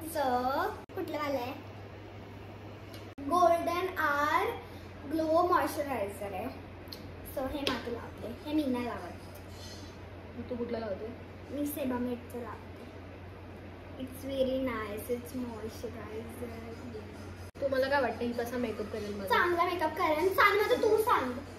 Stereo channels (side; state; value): both; identical; correlation 1.00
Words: कुठलं वालं आहे. गोल्डन आर ग्लो मॉइश्चरायझर आहे. सो हे मातू लावते. हे मी नाही लावत. तू कुठलं लावते. मी सेबामेडचं लावते. It's very nice. It's moisturiser. तुम्हाला काय वाटतं ही कसा मेकअप करेल. मला चांगला मेकअप करेल. सांग माझं तू सांग.